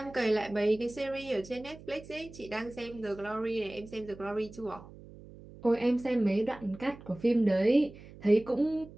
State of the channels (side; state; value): right; noise; hum, 18 dB below the sound